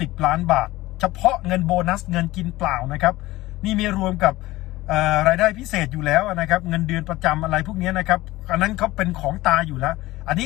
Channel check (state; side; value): quieter; right; 18.1 dB